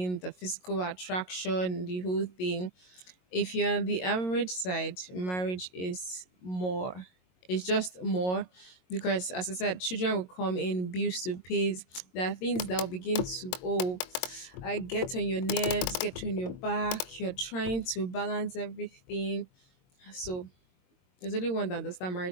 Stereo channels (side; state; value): right; late; 23 ms